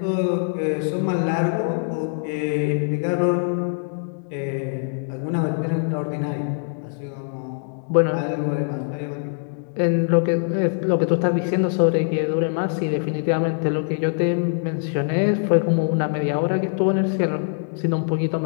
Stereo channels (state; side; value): silent; right; digital silence